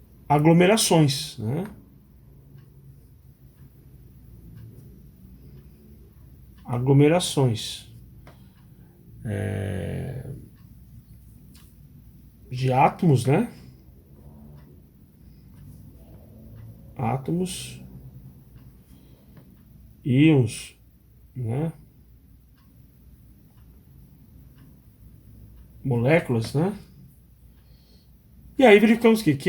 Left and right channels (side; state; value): both; identical; correlation 1.00